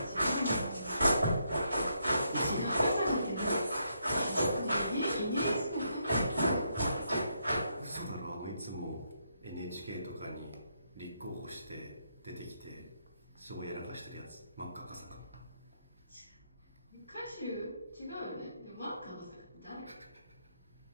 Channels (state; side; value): inverted; both; correlation -0.77